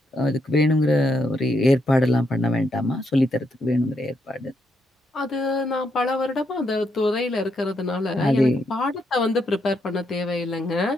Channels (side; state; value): both; normal; correlation 0.79